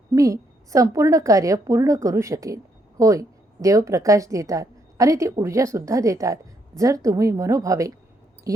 मी संपूर्ण कार्य पूर्ण करू शकेन. होय, देव प्रकाश देतात आणि ती ऊर्जासुद्धा देतात. जर तुम्ही मनोभावे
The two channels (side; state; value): both; normal; correlation 0.74